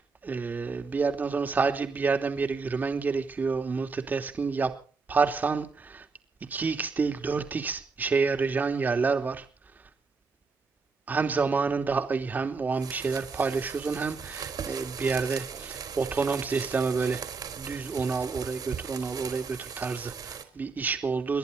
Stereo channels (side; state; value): left; quieter; 4.5 dB